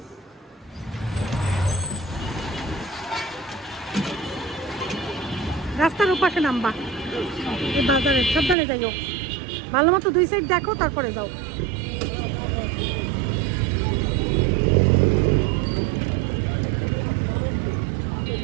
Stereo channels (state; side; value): drops out; left; at 8.6 s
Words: রাস্তার ওপাশে নামবা, এই বাজারে সাবধানে যাইও, ভালো মতো 2 সাইড দেখো তারপরে যাও।